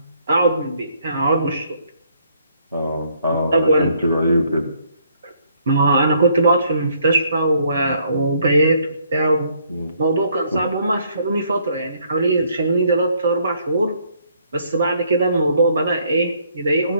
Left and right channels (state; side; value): inverted; both; correlation -0.67